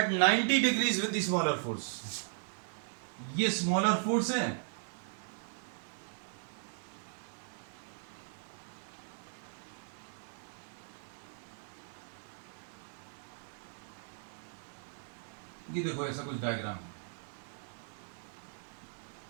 90 degrees with the smaller force, ये स्मॉलर फोर्स है, ये देखो ऐसा कुछ डायग्राम,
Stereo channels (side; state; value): left; silent; digital silence